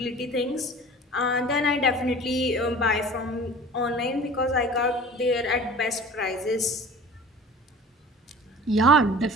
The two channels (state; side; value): normal; both; correlation 0.42